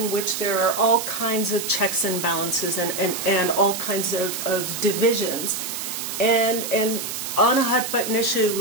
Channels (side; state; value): right; noise; hiss, 6 dB below the sound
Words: which there are all kinds of checks and balances and all kinds of divisions, and on a hot button issue